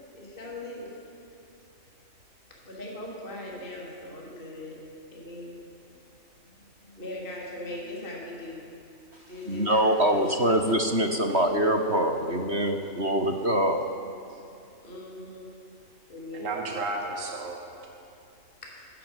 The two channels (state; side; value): late; left; 3.1 ms